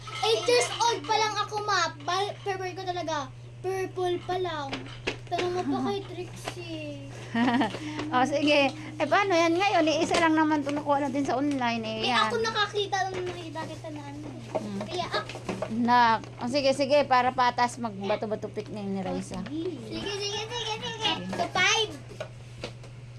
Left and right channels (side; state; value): both; identical; correlation 1.00